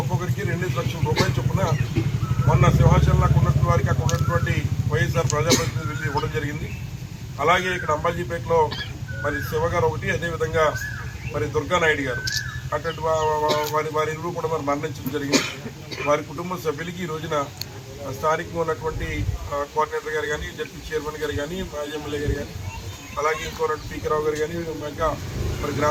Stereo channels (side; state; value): both; identical; correlation 1.00